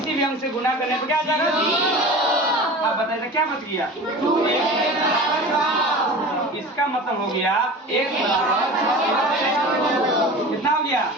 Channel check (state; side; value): normal; both; correlation 0.35